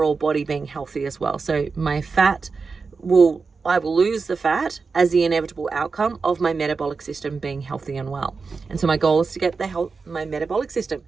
body being healthy as well. So my fat will I will lose the fat as the inevitable outcome of my metabolic system being healthy and well. And so my goal is to get my metabolic system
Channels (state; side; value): quieter; left; 4.6 dB